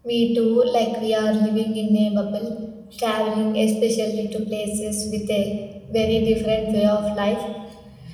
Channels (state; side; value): identical; both; correlation 1.00